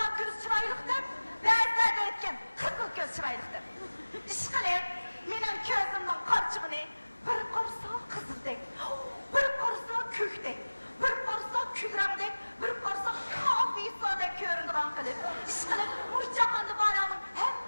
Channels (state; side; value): inverted; both; correlation -1.00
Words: ko'z chiroyliq deb. Ba'zilar deydigan qizil ko'z chiroyliq deb. Ish qilib, mening ko'zimning qorchig'ini bir qarsa qizildek, bir qarsa ko'kdek, bir qarsa kulrangdek, bir qarsa kofisodek ko'rinadigan qilib, ish qilib, mush jahonda borlarning